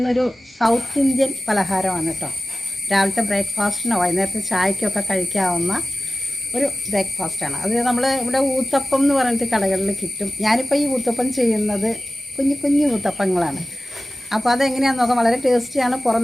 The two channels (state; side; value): normal; both; correlation 0.95